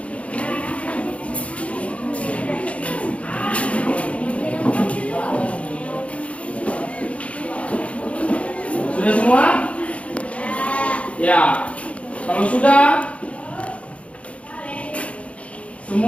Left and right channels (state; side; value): late; right; 0.063 ms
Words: Sudah semua? Ya. Kalau sudah,